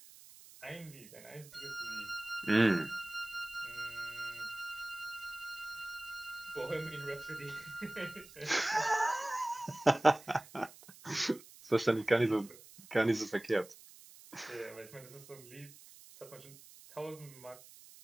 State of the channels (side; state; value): right; noise; hiss, 20 dB below the sound